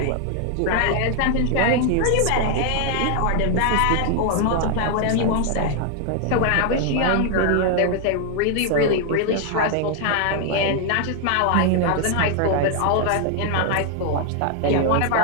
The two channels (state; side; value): different; both; correlation 0.00